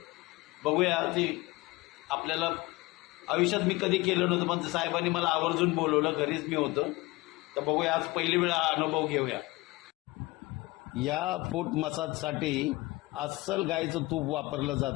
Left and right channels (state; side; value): quieter; right; 21.7 dB